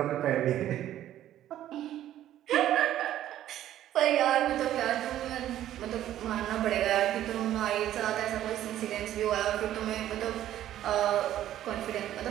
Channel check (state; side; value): quieter; left; 12.4 dB